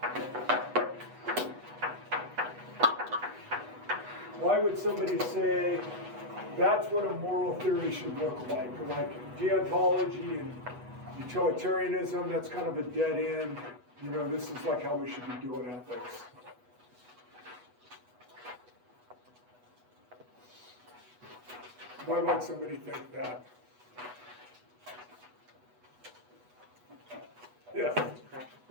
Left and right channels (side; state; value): left; late; 8.1 ms